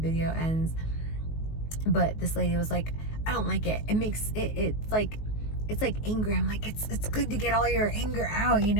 ends. But this lady was like, I don't like it. It makes it's like anger. I'm like, it's good to get all your anger out, you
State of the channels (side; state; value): right; late; 19 ms